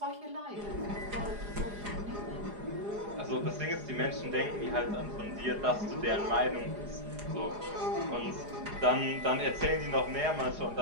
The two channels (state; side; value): late; left; 4.9 ms